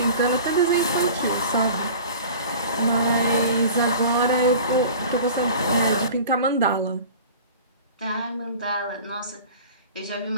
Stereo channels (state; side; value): inverted; both; correlation -0.41